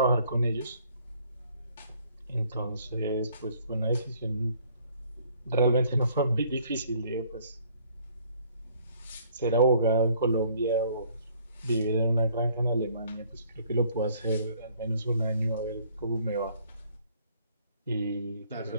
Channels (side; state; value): both; inverted; correlation -0.60